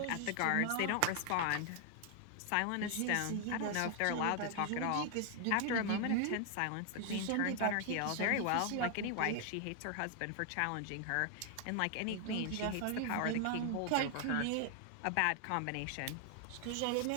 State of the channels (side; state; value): both; different; correlation 0.00